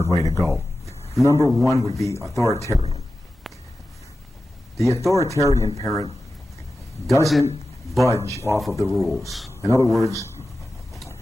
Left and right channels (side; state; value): both; normal; correlation 0.94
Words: way to go. Number one would be authoritarian. The authoritarian parent doesn't budge off of the rules. In other words,